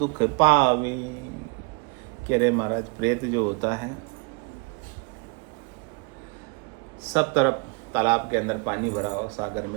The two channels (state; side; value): quieter; left; 31.1 dB